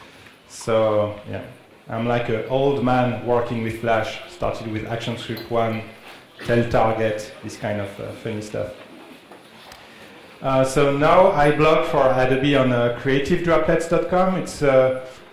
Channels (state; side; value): identical; both; correlation 1.00